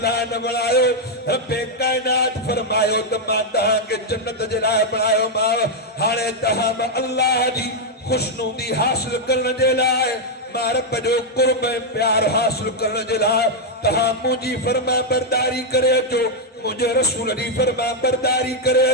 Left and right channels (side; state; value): both; normal; correlation -0.01